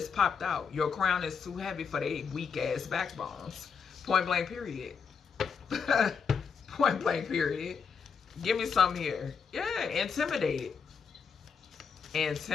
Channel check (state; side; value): quieter; right; 6.1 dB